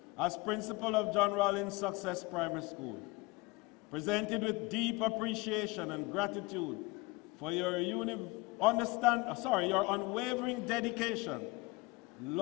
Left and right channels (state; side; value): quieter; right; 24.2 dB